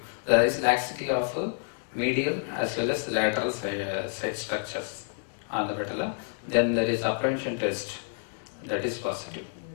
There is laxity of medial as well as lateral side structures on the patella. Then there is apprehension test, that is positive.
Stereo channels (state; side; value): silent; right; 59 dB below the other